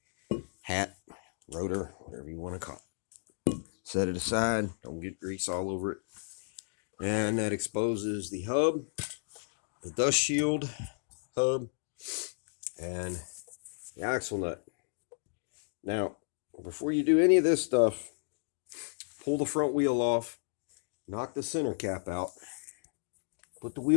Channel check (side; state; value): right; silent; digital silence